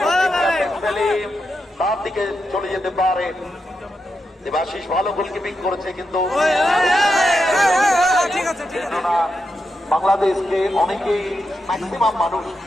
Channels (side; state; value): both; normal; correlation 0.86